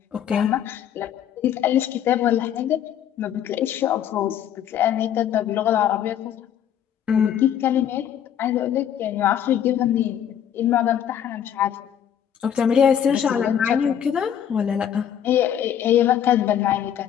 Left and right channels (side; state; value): right; quieter; 9.6 dB